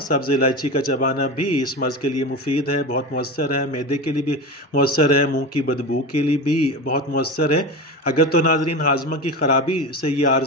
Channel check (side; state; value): both; normal; correlation 0.25